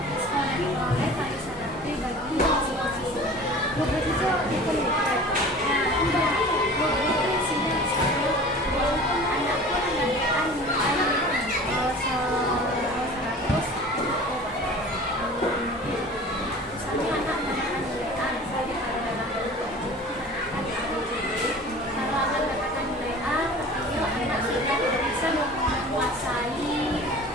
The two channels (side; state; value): both; normal; correlation 0.41